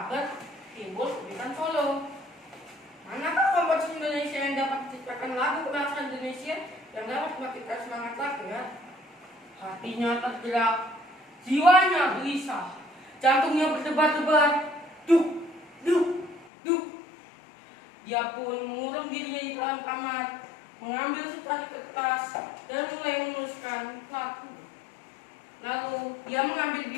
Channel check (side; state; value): right; drops out; at 16.5 s